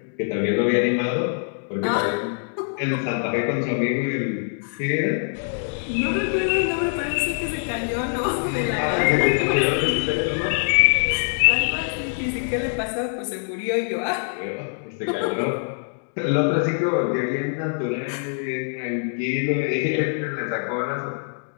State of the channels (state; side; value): silent; right; 63 dB below the other